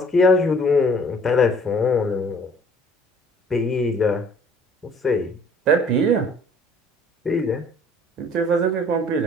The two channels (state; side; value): normal; both; correlation 0.55